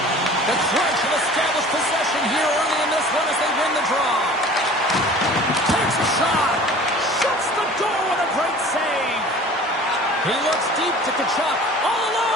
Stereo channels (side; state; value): both; normal; correlation 0.44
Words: The Crunch have established possession here early in this one as they win the draw. Takes a shot. Shuts the door with a great save. He looks deep to Tkachuk. All